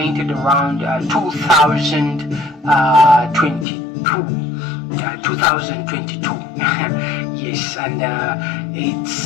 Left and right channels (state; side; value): drops out; right; at 3.7 s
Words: around 2022. Yes, and it's